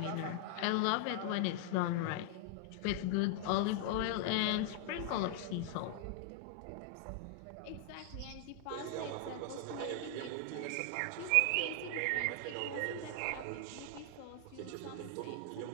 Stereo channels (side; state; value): both; different; correlation 0.00